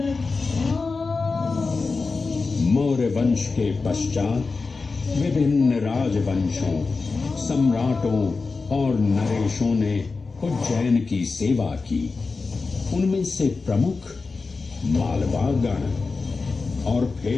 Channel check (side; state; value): right; quieter; 4.2 dB